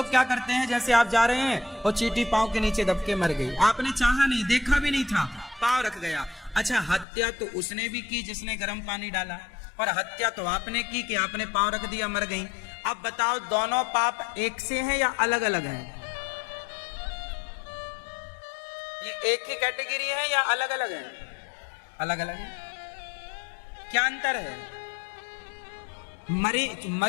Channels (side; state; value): right; drops out; at 7.1 s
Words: क्या करते हैं, जैसे आप जा रहे हैं और चींटी पांव के नीचे दब के मर गई, आपने चाहा नहीं, देखा भी नहीं था, पांव रख गया। अच्छा, हत्या तो उसने भी की जिसने गर्म पानी डाला, और हत्या तो आपने की कि आपने पांव रख दिया, मर गई। अब बताओ, दोनों पाप एक से हैं या अलग अलग हैं? ये एक ही कैटेगरी है या अलग अलग है? अलग अलग है। क्या अंतर है?